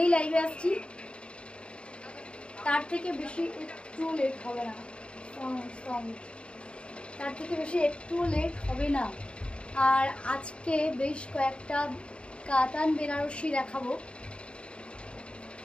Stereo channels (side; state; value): right; late; 0.056 ms